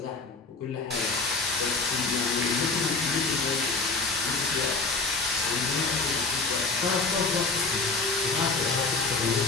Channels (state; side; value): quieter; right; 3.7 dB